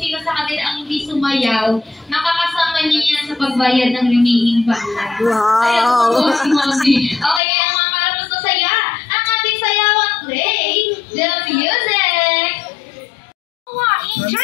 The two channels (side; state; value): right; drops out; at 7.4 s